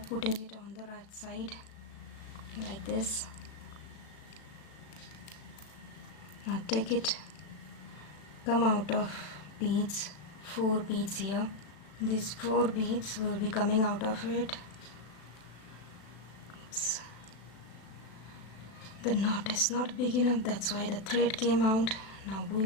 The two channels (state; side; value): late; right; 36 ms